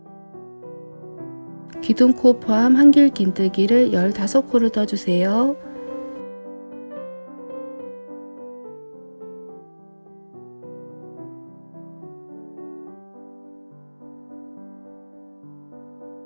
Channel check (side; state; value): both; inverted; correlation -1.00